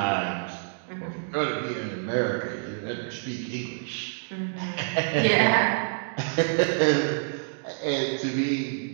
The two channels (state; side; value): silent; left; digital silence